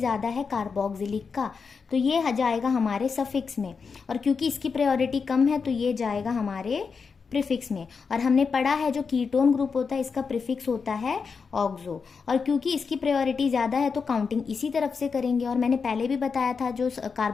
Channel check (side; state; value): right; quieter; 5.4 dB